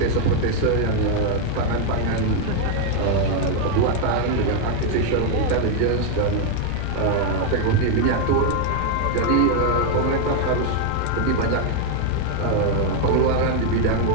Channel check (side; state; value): both; different; correlation 0.01